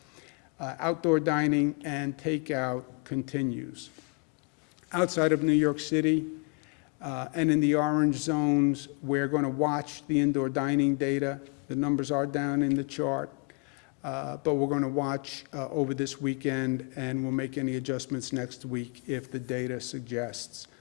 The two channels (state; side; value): quieter; right; 33.5 dB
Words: Outdoor dining and takeout continues. Outside of New York City and in the orange zones, we're going to watch the indoor dining data. The numbers are down in the chart, but we're going to watch over this weekend, and we'll make any adjustments next week if the data suggests.